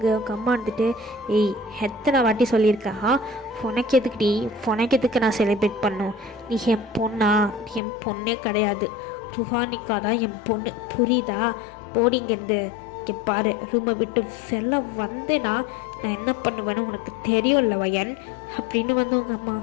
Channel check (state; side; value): drops out; right; at 7.8 s